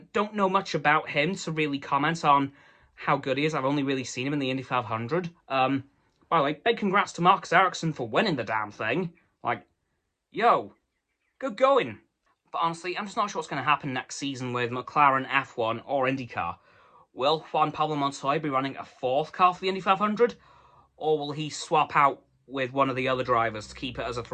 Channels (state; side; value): identical; both; correlation 1.00